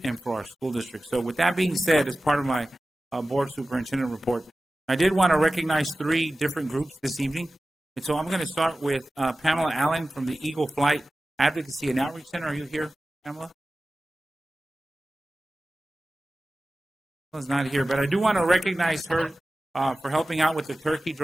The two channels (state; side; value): normal; both; correlation 0.96